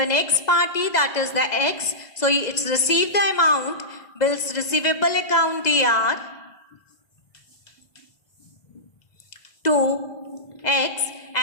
next party, that is the X. So it's received the amount, bills receivable account DR to X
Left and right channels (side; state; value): right; late; 2.0 ms